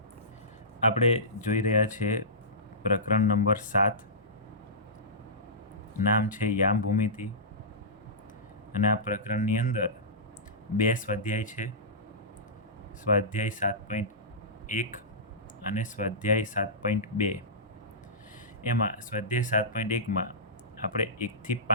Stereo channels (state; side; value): normal; both; correlation -0.19